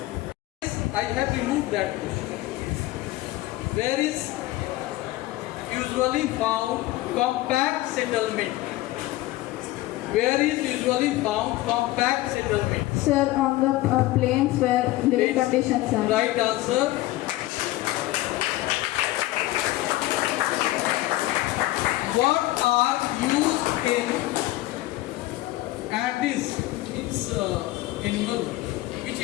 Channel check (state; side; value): quieter; right; 17.4 dB